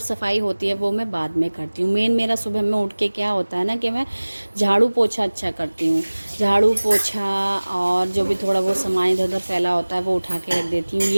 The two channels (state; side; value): inverted; both; correlation -1.00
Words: होती है वो मैं बाद में करती हूँ। मेन मेरा सुबह में उठ के क्या होता है ना कि मैं झाड़ू पोछा अच्छा करती हूँ। झाड़ू पोछा और जो भी थोड़ा बहुत सामान इधर उधर फैला होता है वो उठा के रख देती हूँ।